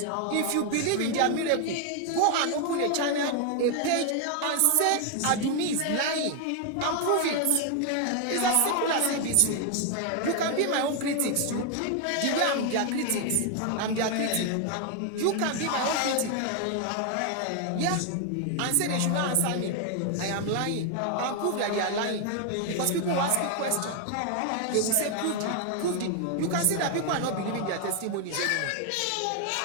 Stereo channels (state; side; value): different; both; correlation 0.00